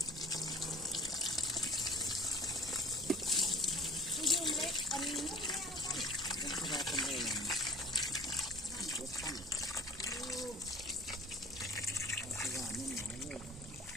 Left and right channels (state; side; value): normal; both; correlation 0.44